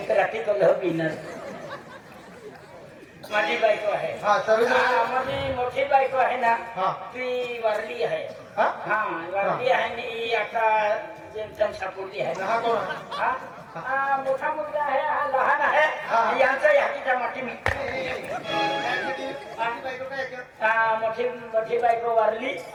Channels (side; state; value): both; identical; correlation 1.00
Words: तर रात्री कल बिनर माझी बायको आहे हा सर्व हा, माझी मोठी बायको आहे ना हा. ती वारली आहे हा हा वारली आहे आणि ही आता जेमतेम सापडली आहे हा कोण आहे हा हा मोठा मुलगा आहे हा लहान आहे हा. यांचा यादीचा मोठी मी हा मोठी मोठी बायको वारली